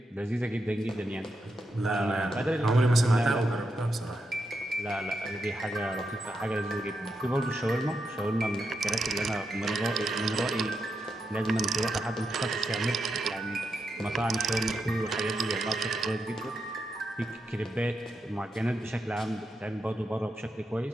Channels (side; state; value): both; normal; correlation 0.85